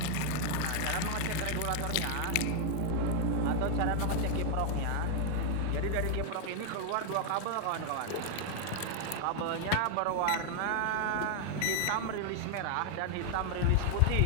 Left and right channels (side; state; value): both; different; correlation 0.00